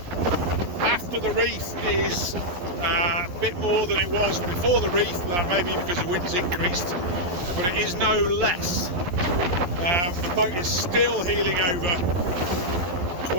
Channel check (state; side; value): late; left; 12 ms